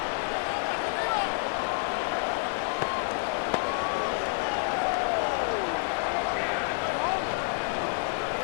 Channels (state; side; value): silent; right; 59 dB below the other